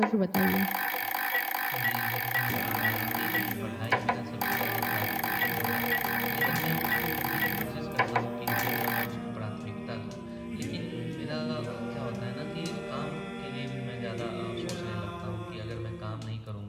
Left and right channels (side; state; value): both; identical; correlation 1.00